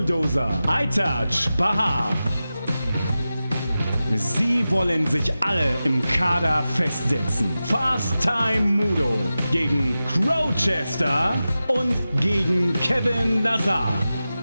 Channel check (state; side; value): inverted; both; correlation -0.94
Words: Aytac Bahar. Sie wollen sich alle im Kader festsetzen. Fast Time Moodo gegen Crowchester und gegen Kevin Lazar.